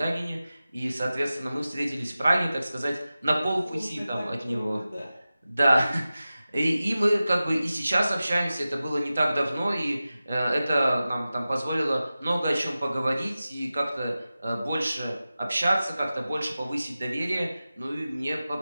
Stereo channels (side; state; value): both; inverted; correlation -0.95